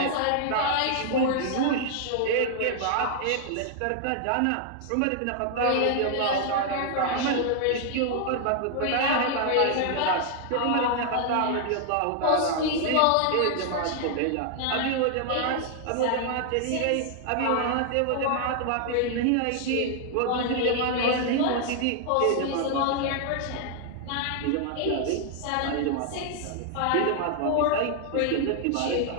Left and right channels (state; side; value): different; both; correlation 0.00